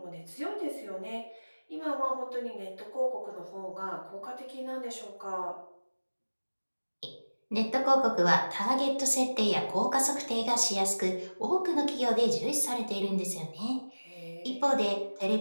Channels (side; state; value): both; inverted; correlation -1.00